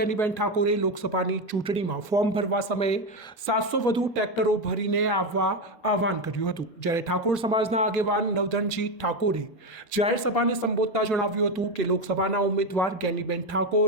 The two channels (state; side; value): normal; both; correlation 0.12